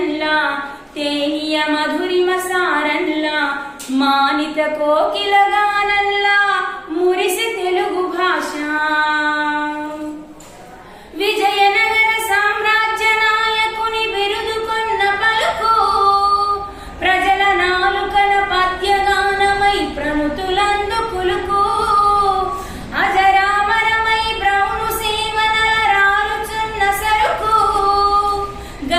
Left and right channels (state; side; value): identical; both; correlation 1.00